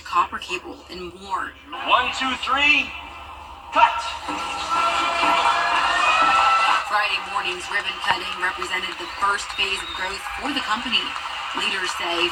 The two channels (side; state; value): both; identical; correlation 1.00